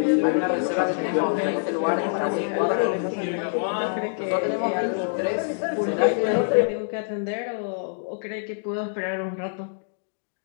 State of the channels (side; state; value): right; silent; digital silence